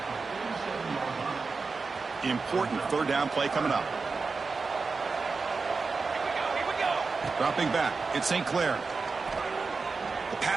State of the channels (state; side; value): quieter; left; 4.4 dB